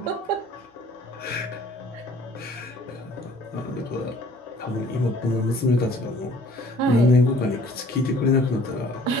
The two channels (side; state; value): both; normal; correlation 0.54